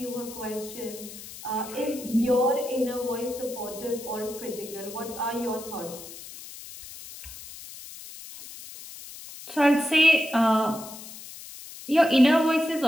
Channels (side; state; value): left; noise; hiss, 14 dB below the sound